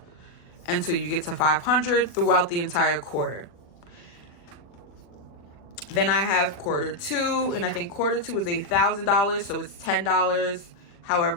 until you get to 500 throughout the entire quarter. Then I have quarter 2, and I think quarter 2 is $1,000, so it's $10,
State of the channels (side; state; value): right; late; 40 ms